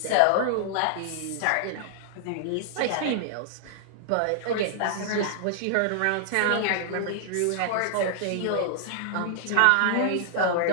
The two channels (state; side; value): different; both; correlation -0.01